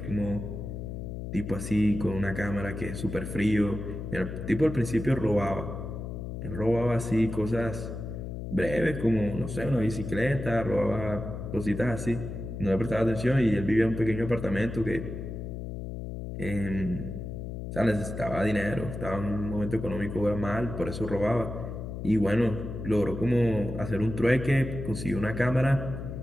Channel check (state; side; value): noise; left; hum, 7 dB below the sound